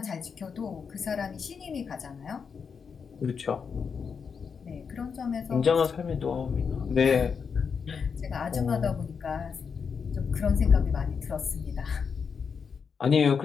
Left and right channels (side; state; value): right; quieter; 6.1 dB